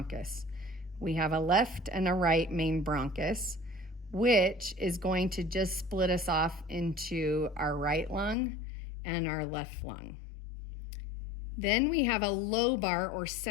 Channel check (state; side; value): drops out; right; at 8.3 s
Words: We have a left and a right main bronchus, which is going to just split us off into our right lung and our left lung. Then we have a lobar or